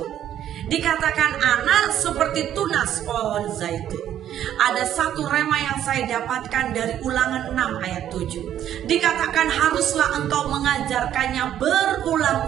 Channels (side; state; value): left; quieter; 10.9 dB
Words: Dikatakan anak seperti tunas pohon zaitun. Ada satu rema yang saya dapatkan dari Ulangan 6 ayat 7. Dikatakan haruslah engkau mengajarkannya